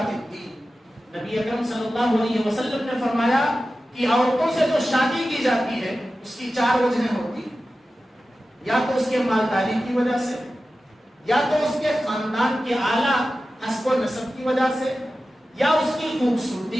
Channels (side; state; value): both; normal; correlation 0.94